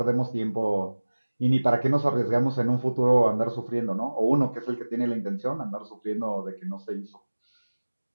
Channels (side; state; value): both; inverted; correlation -1.00